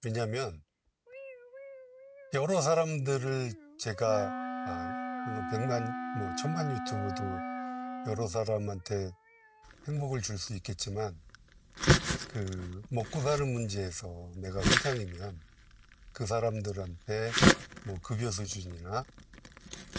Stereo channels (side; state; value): both; identical; correlation 1.00